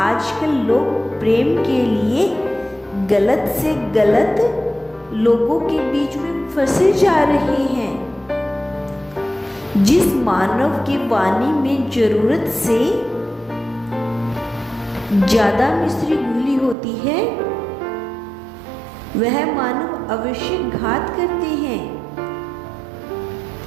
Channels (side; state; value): left; drops out; at 16.8 s